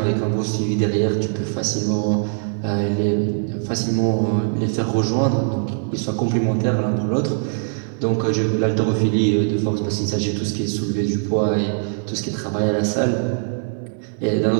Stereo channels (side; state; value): left; silent; 65 dB below the other